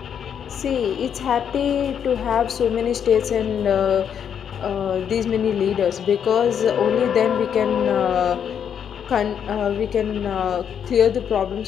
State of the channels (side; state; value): right; quieter; 8.2 dB